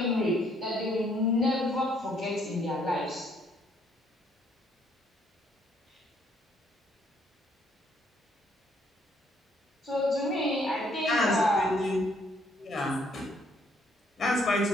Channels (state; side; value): normal; both; correlation 0.67